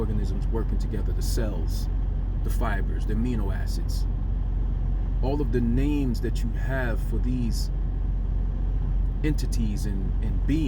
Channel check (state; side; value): identical; both; correlation 1.00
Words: working together, the cells, the fibers, the amino acids, all of the names that you have for these entities and